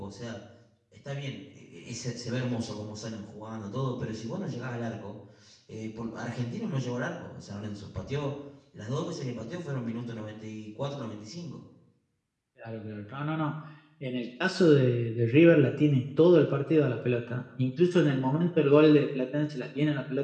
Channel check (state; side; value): identical; both; correlation 1.00